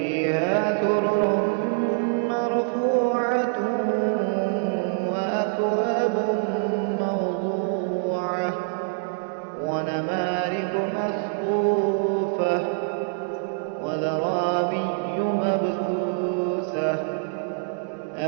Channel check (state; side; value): silent; left; digital silence